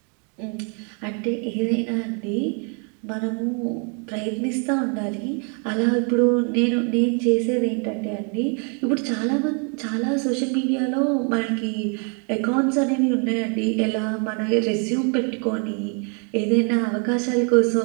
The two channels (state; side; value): quieter; left; 38.7 dB